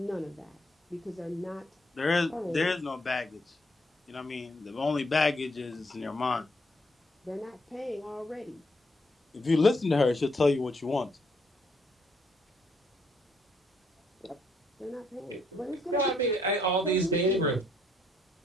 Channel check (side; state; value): both; normal; correlation 0.72